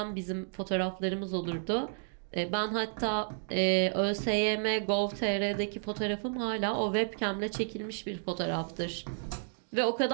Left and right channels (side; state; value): left; silent; digital silence